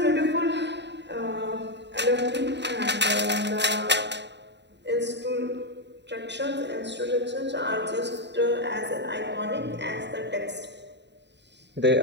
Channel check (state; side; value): late; left; 0.51 ms